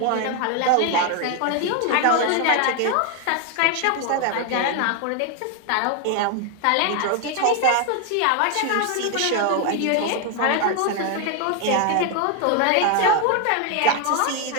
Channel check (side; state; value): both; different; correlation 0.01